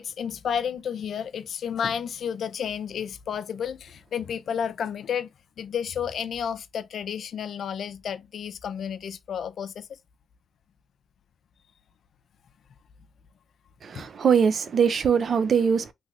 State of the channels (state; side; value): normal; both; correlation 0.71